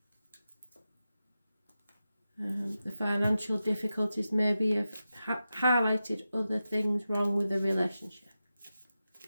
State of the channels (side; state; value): both; inverted; correlation -0.91